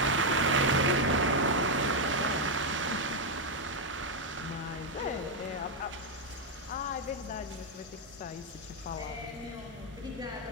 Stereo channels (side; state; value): both; normal; correlation 0.01